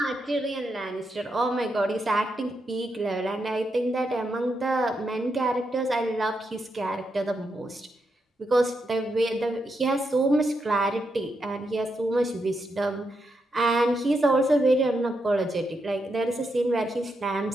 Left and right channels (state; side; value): normal; both; correlation 0.83